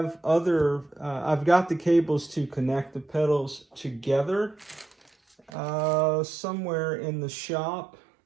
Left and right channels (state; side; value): drops out; left; at 5.5 s